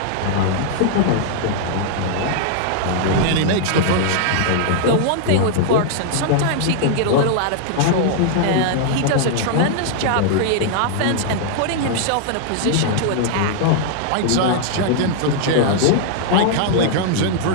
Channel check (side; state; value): both; different; correlation -0.01